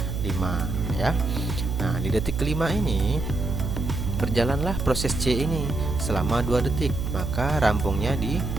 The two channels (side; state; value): right; noise; hum, 3 dB below the sound